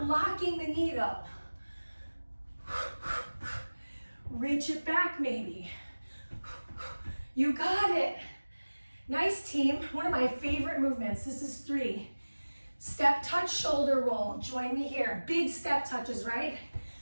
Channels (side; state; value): both; inverted; correlation -1.00